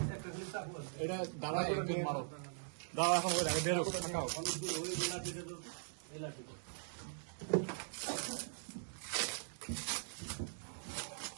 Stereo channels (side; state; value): left; silent; digital silence